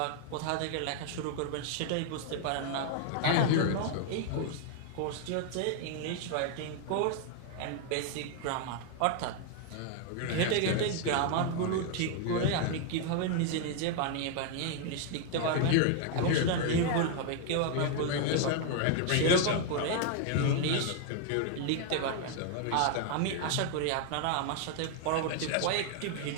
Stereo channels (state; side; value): different; both; correlation 0.00